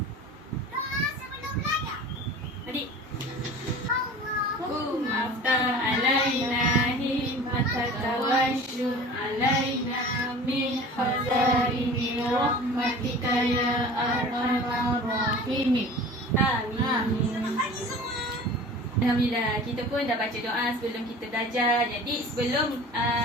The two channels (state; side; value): normal; both; correlation 0.40